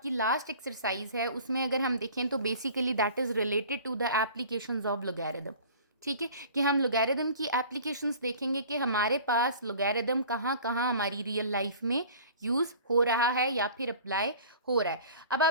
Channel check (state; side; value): inverted; both; correlation -0.45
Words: लास्ट एक्सरसाइज है उसमें अगर हम देखें तो basically that is related to the applications of logarithm, ठीक है, कि हम लॉगरिथम की एप्लीकेशंस देखेंगे कि हमारे पास लॉगरिथम कहाँ कहाँ हमारी रियल लाइफ में यूज़ हो रहा है या फिर अप्लाई हो रहा है। अब